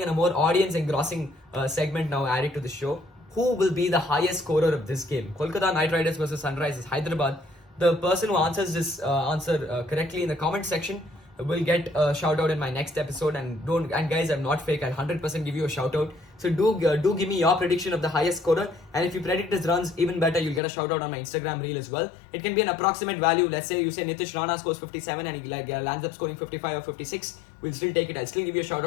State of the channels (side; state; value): right; drops out; at 20.6 s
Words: and a more audience engrossing segment now added to the show. who will be the highest scorer of this game. Kolkata Knight Riders versus Sunrisers Hyderabad. The person who answers this answer correctly in the comment section will get a shout out in my next episode. And guys, I'm not fake. I'll 100% give you a shout out. So do give me your prediction of the highest scorer. And if you predict his runs, even better, you'll get a shout out on my Instagram reel as well. It can be an approximate value. Let's say you say Nitish Rana scores 57 and he lands up scoring 55 or 56. We'll still take it. I'll still give you a shout